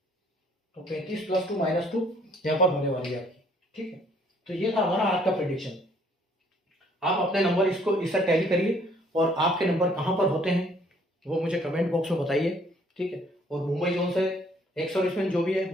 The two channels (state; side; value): normal; both; correlation 0.61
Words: तो 35 + 2 -2 यहाँ पर होने वाली है आपकी, ठीक है। तो ये था हमारा आज का प्रेडिक्शन। आप अपने नंबर इसको इससे टैली करिए और आपके नंबर कहाँ पर होते हैं वो मुझे कमेंट बॉक्स में बताइए, ठीक है। और मुंबई जोन से एक सर्विसमैन जो भी है